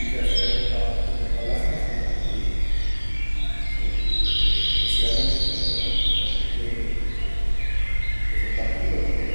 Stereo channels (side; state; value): both; inverted; correlation -1.00